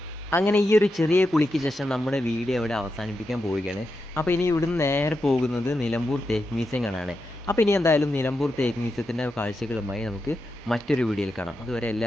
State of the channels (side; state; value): both; normal; correlation 0.87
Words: അങ്ങനെ ഈ ഒരു ചെറിയ കുളിക്ക് ശേഷം നമ്മുടെ വീഡിയോ ഇവിടെ അവസാനിപ്പിക്കാൻ പോവുകയാണ്. അപ്പോൾ ഇനി ഇവിടുന്ന് നേരെ പോകുന്നത് നിലമ്പൂർ തേക്ക് മ്യൂസിയം കാണാനാണ്. അപ്പോൾ ഇനി എന്തായാലും നിലമ്പൂർ തേക്ക് മ്യൂസിയത്തിൻ്റെ കാഴ്ചകളുമായി നമുക്ക് മറ്റൊരു വീഡിയോയിൽ കാണാം. അതുവരെ